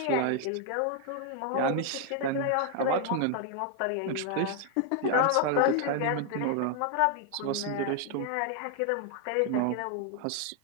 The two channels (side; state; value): both; different; correlation 0.00